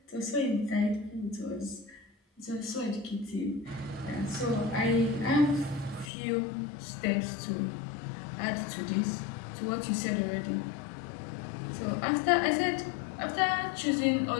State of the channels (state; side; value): drops out; right; at 6.1 s